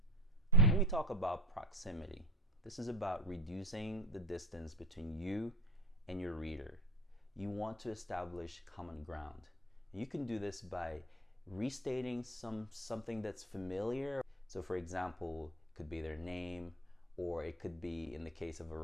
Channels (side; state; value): both; normal; correlation 0.30